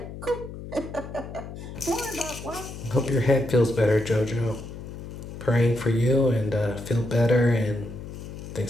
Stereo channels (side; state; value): left; noise; hum, 11 dB below the sound